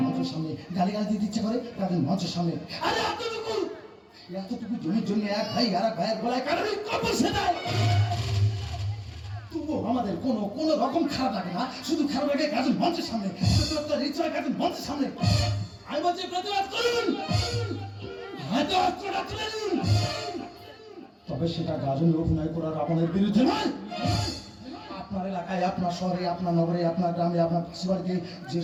মঞ্চের সামনে গালি গালা দিতে ইচ্ছে করে গাজন মঞ্চের সামনে। আরে এতটুকু জমির জন্য এক ভাই আর এক ভাইয়ের গলায় কারোরই কবর সেটাই। তবুও আমাদের কোনো রকম খারাপ লাগে না, শুধু খারাপ লাগে গাজন মঞ্চের সামনে, গাজন মঞ্চের সামনে। আমি বলছি প্রতিবাদ করুন, হয়তো অস্ত্রটা তুলে নিন, তবে সেটা গাজনে অভিনয় করার আপনাদের বিরুদ্ধে নয়। আপনার এলাকায়, আপনার শহরে, আপনার নগরে, আপনার গ্রামে, আপনার পাশে যে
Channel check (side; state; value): both; identical; correlation 1.00